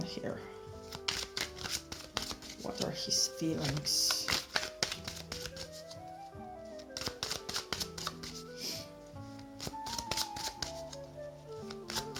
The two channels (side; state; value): both; identical; correlation 1.00